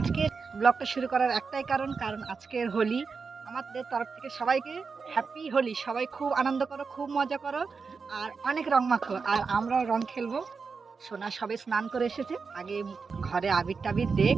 ব্লগটা শুরু করার একটাই কারণ আজকের হোলি। আমাদের তরফ থেকে সবাইকে হ্যাপি হোলি। সবাই খুব আনন্দ করো, খুব মজা করো, আর অনেক রং মাখো। আর আমরাও রং খেলবো। সোনা সবে স্নান করে এসেছে, আগে ঘরে আবির টাবির দেখ।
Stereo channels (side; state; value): left; quieter; 5.0 dB